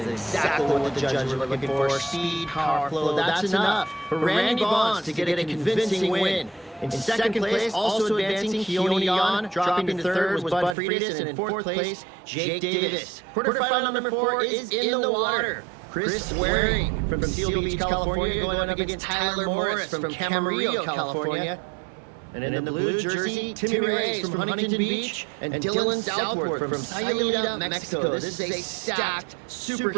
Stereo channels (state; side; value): drops out; left; at 10.8 s